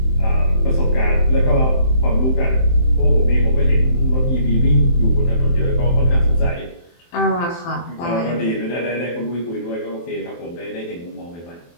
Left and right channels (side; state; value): right; late; 23 ms